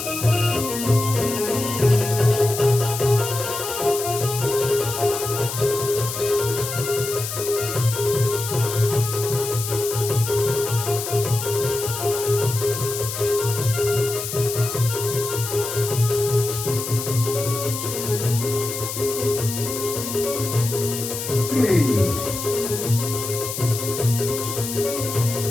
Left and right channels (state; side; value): noise; left; hiss, 6 dB below the sound